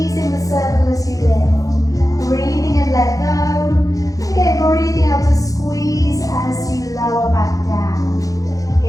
the circle as you lift. Breathing in, let go. And again, breathing out to squeeze as you lower back down.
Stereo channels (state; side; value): late; right; 0.17 ms